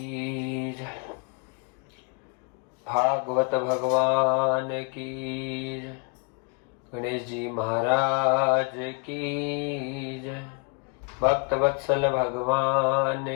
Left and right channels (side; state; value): right; quieter; 32.3 dB